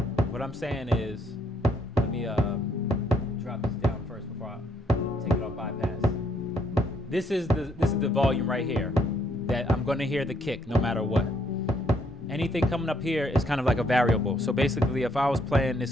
What I'm saying is, let me drop this down first before I take it off bypass. This is the volume right here. that I'm going to hear the kick no matter what. Anything coming up here is kind of like a variable. So basically, if I was playing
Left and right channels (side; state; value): both; normal; correlation 0.69